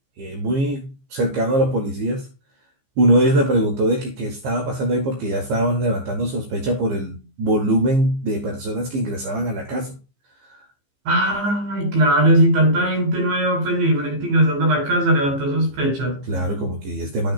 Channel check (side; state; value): left; late; 15 ms